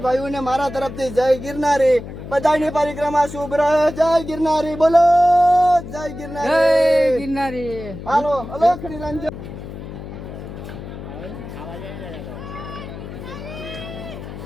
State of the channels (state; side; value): noise; left; hum, 11 dB below the sound